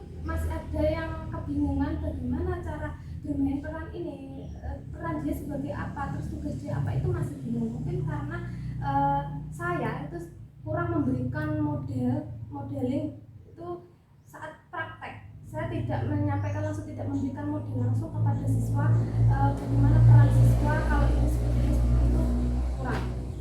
masih ada yang kebingungan bagaimana cara bermain peran ini, peran dia sebagai apa, terus tugas dia apa, itu masih bingung. Mungkin karena saya itu kurang memberikan modeling itu saat praktek. Saya tidak menyampaikan langsung, tidak memberikan model langsung kepada siswa bagaimana peran siswa kalau ini seperti itu kurang.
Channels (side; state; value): both; identical; correlation 1.00